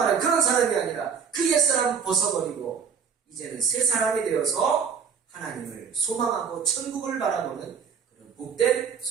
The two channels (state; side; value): quieter; left; 6.5 dB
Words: 그런 사람이 아니라 그 옛사람을 벗어버리고 이제는 새 사람이 되어서 하나님을 소망하고 천국을 바라보는 그런 복된